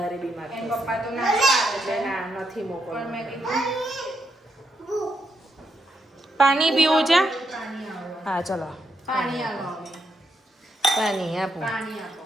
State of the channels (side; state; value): both; normal; correlation 0.80